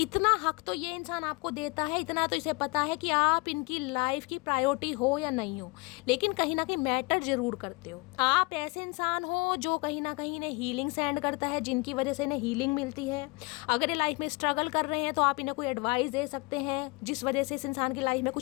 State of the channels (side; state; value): right; quieter; 27.0 dB